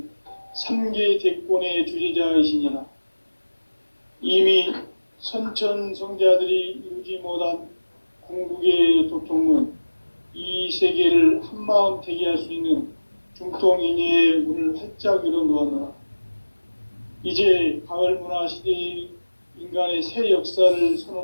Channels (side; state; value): both; inverted; correlation -1.00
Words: 3계 대권의 주재자이시니라. 이미 선천성자들이 이루지 못한 궁극의 도통문, 이 세계를 한마음 되게 할 수 있는 중통인의의 문을 활짝 열어놓았노라. 이제 가을 문화 시대의 인간의 새 역사를